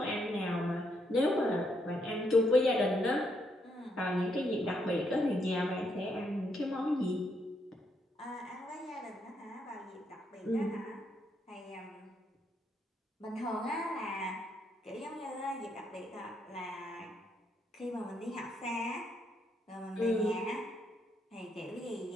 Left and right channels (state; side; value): normal; both; correlation 0.76